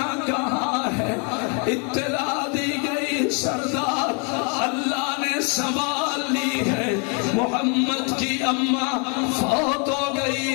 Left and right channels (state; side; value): quieter; right; 35.5 dB